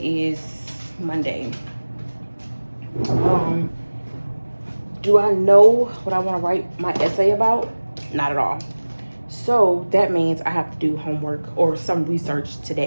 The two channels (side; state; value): both; inverted; correlation -1.00